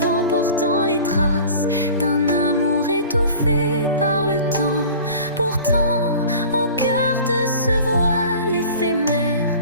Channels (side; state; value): both; inverted; correlation -0.41